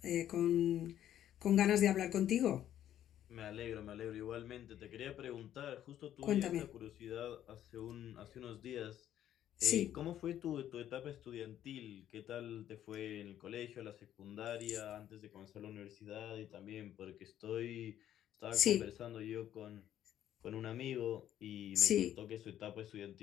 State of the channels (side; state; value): right; quieter; 11.3 dB